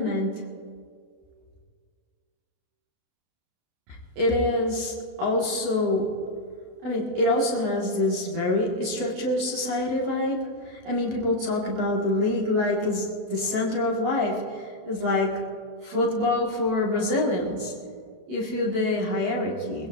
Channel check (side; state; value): left; late; 28 ms